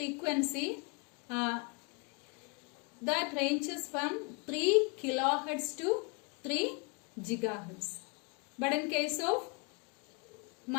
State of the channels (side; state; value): right; quieter; 32.0 dB